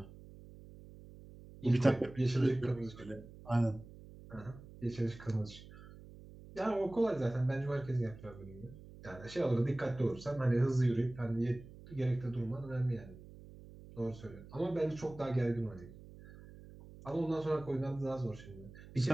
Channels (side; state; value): right; noise; hum, 18 dB below the sound